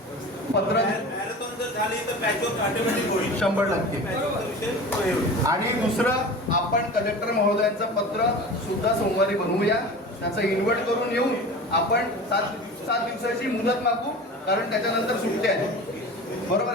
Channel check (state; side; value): normal; both; correlation 0.35